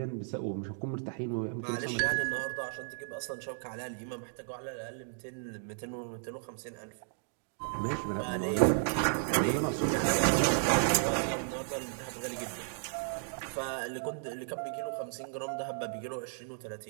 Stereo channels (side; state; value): left; silent; digital silence